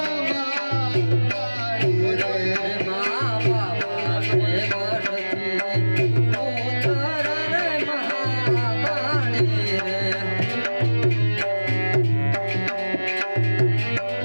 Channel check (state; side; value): inverted; both; correlation -1.00